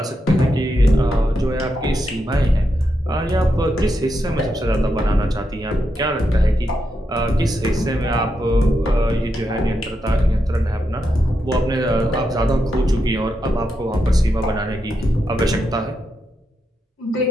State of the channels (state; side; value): normal; both; correlation 0.84